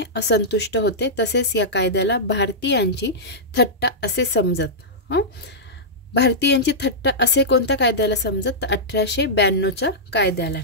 असंतुष्ट होते. तसेच या कायद्याला भारतीयांची थट्टा असे समजत. भारतीयांची थट्टा असे कोणत्या कायद्याला समजत तर 1892च्या कायद्याला.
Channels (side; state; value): both; normal; correlation -0.12